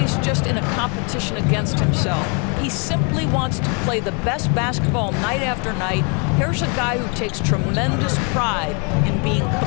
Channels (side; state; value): right; quieter; 35.9 dB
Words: just in a competition against himself. He simply wants to play the best basketball night after night. Here's a guy who takes tremendous pride in being